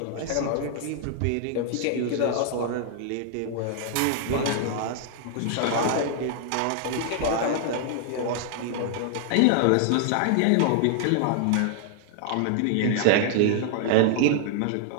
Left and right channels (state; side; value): different; both; correlation 0.00